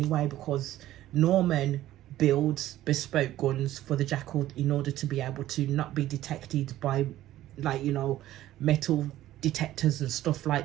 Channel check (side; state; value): left; quieter; 14.2 dB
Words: because Norman builds bespoke guns for the Jackal in order to be able to not be detected by, like, you know, metal detectors and stuff